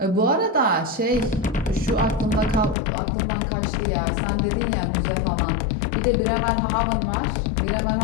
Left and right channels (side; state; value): right; drops out; at 2.8 s